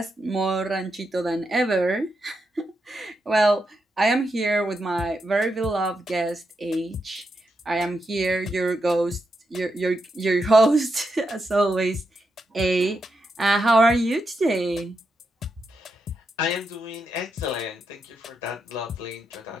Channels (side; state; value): both; normal; correlation 0.84